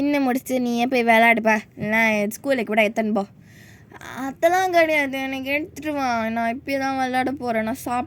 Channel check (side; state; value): both; identical; correlation 1.00